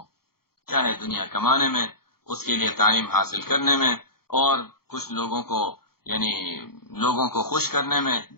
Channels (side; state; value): right; late; 0.94 ms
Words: چاہے دنیا کمانے میں، اس کے لیے تعلیم حاصل کرنے میں، اور کچھ لوگوں کو خوش کرنے میں،